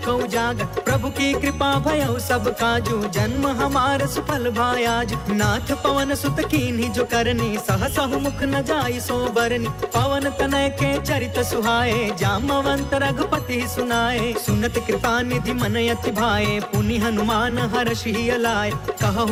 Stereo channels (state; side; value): identical; both; correlation 1.00